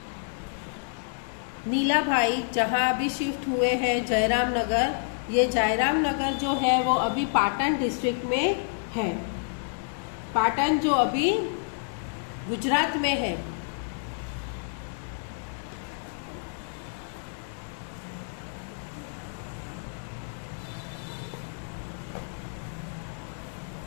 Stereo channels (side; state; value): right; silent; digital silence